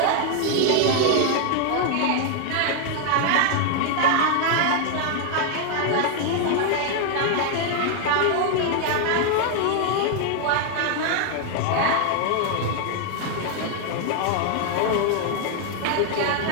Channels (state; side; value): different; both; correlation 0.00